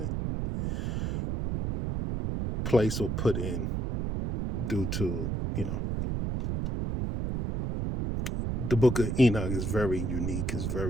placed or put in due to the book of Enoch is very unique. It's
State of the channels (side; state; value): right; noise; rumble, 1 dB below the sound